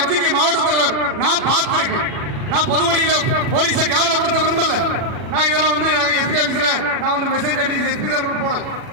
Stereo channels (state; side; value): late; left; 40 ms